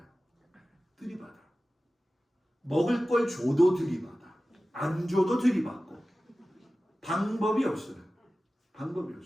먹을 걸 줘도 들이받아. 안 줘도 들이받고. 방법이 없어요.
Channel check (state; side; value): normal; both; correlation 0.96